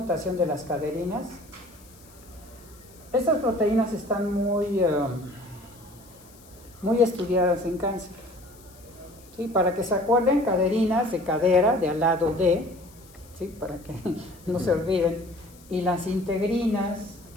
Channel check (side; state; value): left; noise; hiss, 25 dB below the sound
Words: de las caderinas, estas proteínas están muy estudiadas en cáncer. ¿Sí? Para que se acuerden, caderinas de cadera, de al lado de, ¿sí? Para que no se olviden, y las integrinas